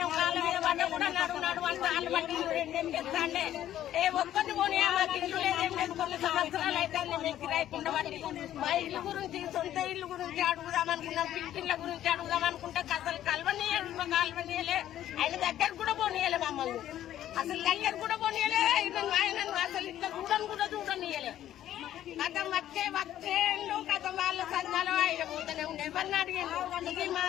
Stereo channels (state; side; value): quieter; right; 12.1 dB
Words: కాళ్ళ మీద పడ్డ కూడా నడు అంటే వాళ్ళు మట్టి రెండేం చేస్తాండే ఏ ఒక్కటి పోనీ మాకు ఇల్లు లేదేం లేదు. కొన్ని సంవత్సరాలు అయితే మేము కిరాయికుండా బట్టి మా ఇల్లు గురించి సొంత ఇల్లు గురించి అడుగుదామనుకున్నాం, పిల్లిళ్ళ గురించి అడుగుదామనుకుంటే అసలు కలవనీయలే. ఆయన దగ్గర కూడా పోనీయలే మమ్మల్ని, అసలు దగ్గర కూడా పోనీయలే. ఆయన అసలు ఇట్లా కూడా చూడనీయలే. కథ వచ్చేండు కథ వాళ్ళ సంఘాలు ఆయన పోతూనే ఉండే. ఎవరిని అడిగిండు ఇది